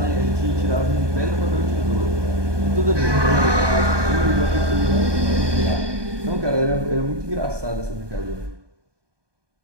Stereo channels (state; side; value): late; left; 1.2 ms